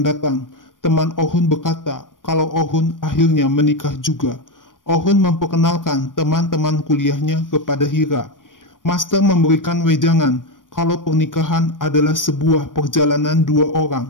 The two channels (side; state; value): right; late; 0.89 ms